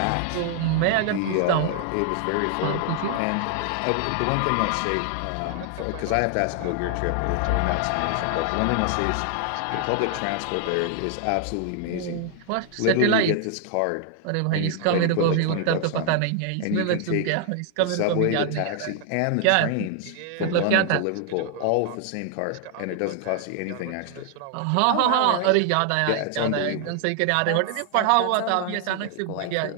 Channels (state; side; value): different; both; correlation 0.00